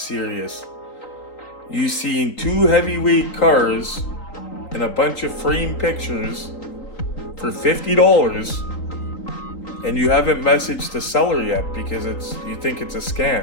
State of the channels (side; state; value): right; late; 3.9 ms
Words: You seen two heavyweight cars and a bunch of framed pictures for $50, and you haven't messaged the seller yet because you think it's a